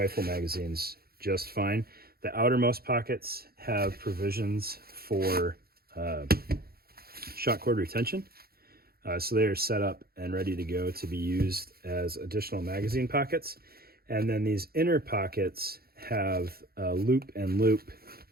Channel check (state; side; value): late; left; 0.44 ms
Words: magazines just fine. The outermost pockets have provisions for shot cord retention. So they are set up and ready to go to be used as additional magazine pockets. And then these inner pockets have loop and loop